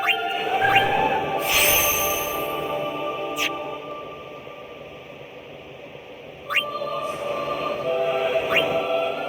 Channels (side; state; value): both; identical; correlation 1.00